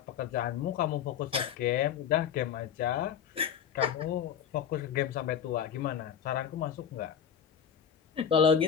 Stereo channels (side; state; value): right; quieter; 8.1 dB